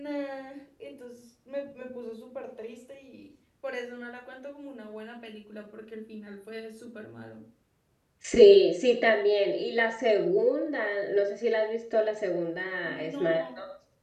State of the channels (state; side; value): identical; both; correlation 1.00